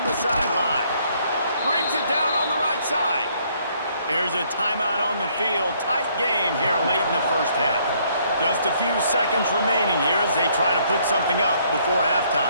the sideline. Brings it down on the right side. There's a timeout on the field. Tight game here late in the first half. Just a few seconds remaining here as they try to put something up before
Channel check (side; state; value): both; inverted; correlation -0.66